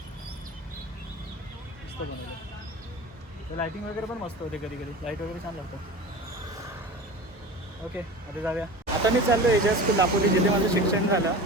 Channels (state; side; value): normal; both; correlation 0.34